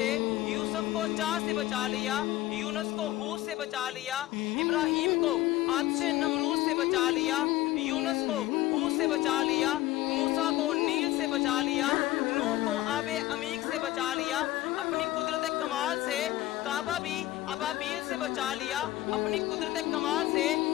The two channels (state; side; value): quieter; right; 16.1 dB